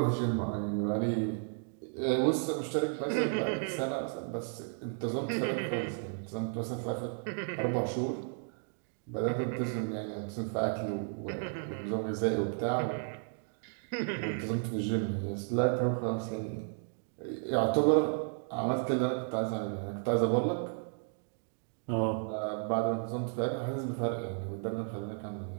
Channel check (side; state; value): left; silent; 55 dB below the other